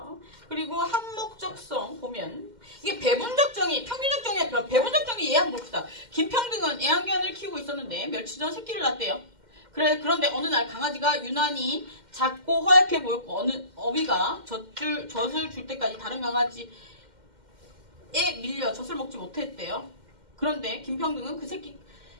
그리고 항목적성 보면 이게 배분적 정의, 평균적 정의와 배분적 정의 이해 한번 봅시다. 김평등은 애완견을 키우고 있었는데 며칠 전 새끼를 낳았대요. 그런데 어느 날 강아지가 유난히 작고 허약해 보였고 어느 어미가 젖을 줄 때까지 다른 강아지에 밀려 젖을 먹지 못했대요. 그런데 김평등은 그 새끼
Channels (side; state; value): left; late; 2.1 ms